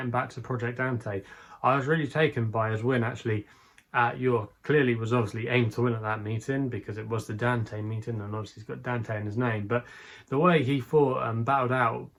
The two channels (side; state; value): both; identical; correlation 1.00